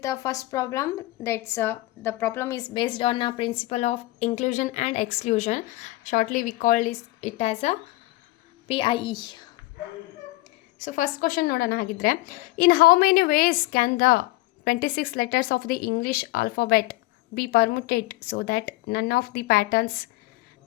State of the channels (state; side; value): quieter; right; 19.0 dB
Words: the first problem. That's the problem is based on a principle of inclusion and exclusion. Shortly we call it as a PIE. So first question nodana hagidre, in how many ways can the 26 letters of the English alphabet be permuted so that none of the patterns